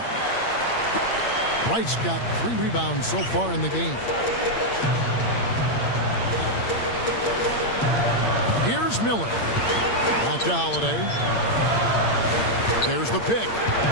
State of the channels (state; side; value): late; right; 8.7 ms